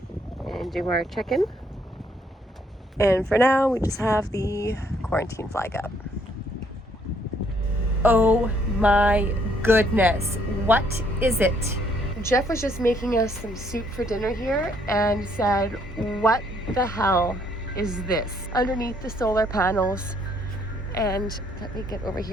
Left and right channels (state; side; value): normal; both; correlation 0.67